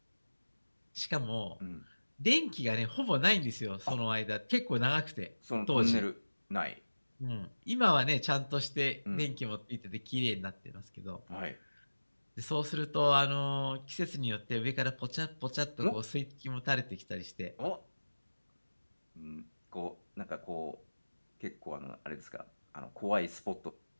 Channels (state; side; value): inverted; both; correlation -1.00